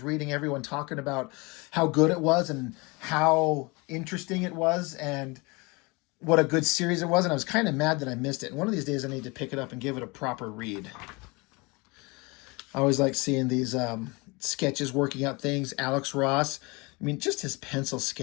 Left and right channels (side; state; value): right; quieter; 26.7 dB